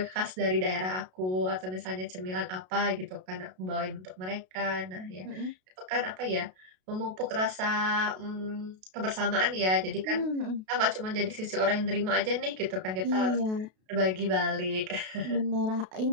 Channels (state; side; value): late; left; 32 ms